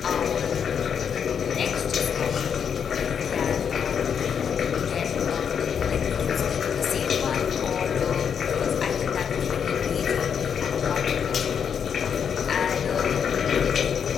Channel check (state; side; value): quieter; right; 7.5 dB